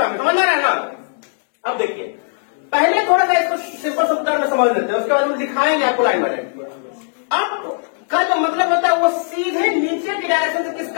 समझ में आ रहा है ना? अब देखिए, पहले थोड़ा सा इसको सिंपल शब्द में समझ लेते हैं, उसके बाद हम दिखाएंगे आपको लाइन बाय लाइन। अप का जो मतलब होता है वो सीधे नीचे की डायरेक्शन से किस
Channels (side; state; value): right; silent; 67 dB below the other